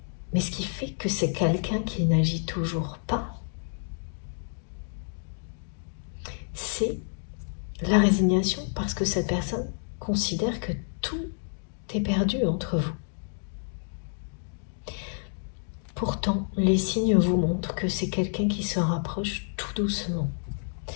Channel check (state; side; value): silent; right; digital silence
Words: Mais ce qui fait que c'est quelqu'un qui n'agit toujours pas, c'est la résignation, parce que cette personne considère que tout est perdu entre vous. Pourtant, les signes vous montrent que c'est quelqu'un qui se rapproche tout doucement.